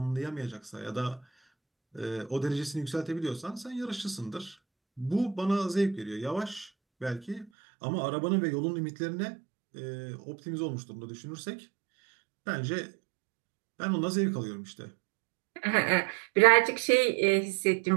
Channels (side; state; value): left; drops out; at 7.5 s